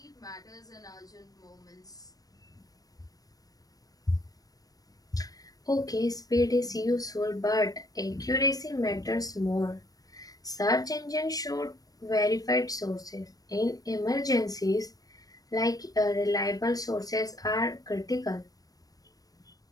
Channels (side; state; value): right; late; 0.18 ms